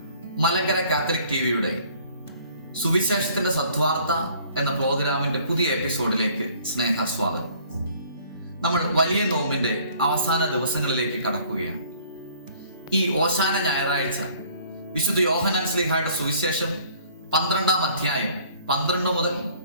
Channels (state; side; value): inverted; both; correlation -0.56